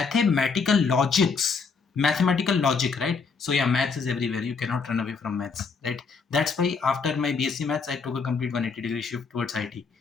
logics, mathematical logic, right? So yeah, maths is everywhere. You cannot run away from maths, right? That's why after my BSc maths, I took a complete 180-degree shift towards IT,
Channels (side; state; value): right; quieter; 5.1 dB